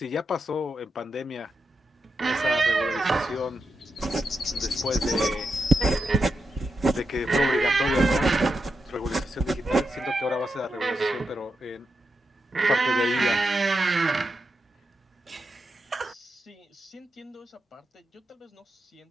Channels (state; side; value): normal; both; correlation 0.86